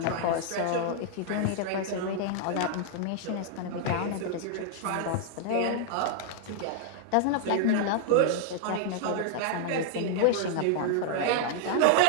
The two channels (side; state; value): both; different; correlation 0.00